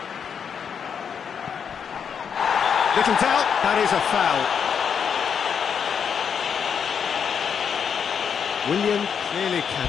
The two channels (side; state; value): right; quieter; 7.1 dB